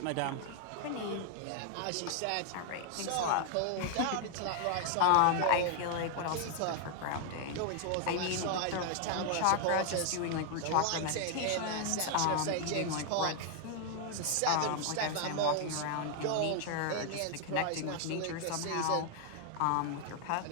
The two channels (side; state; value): both; different; correlation 0.00